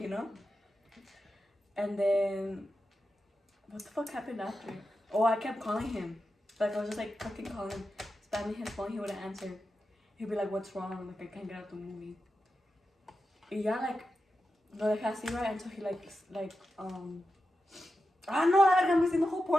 know? And then what the fuck happened after? Oh, I kept calling him. Like I was just like fucking calling him, spamming his phone, he wouldn't answer. He'd be like, what's wrong? Like I can't get out the movie. Yeah, like no dejé así, right? Until he no, I'm missing the whole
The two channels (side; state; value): both; normal; correlation 0.90